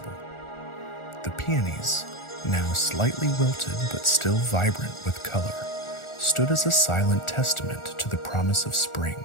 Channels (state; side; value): late; right; 1.4 ms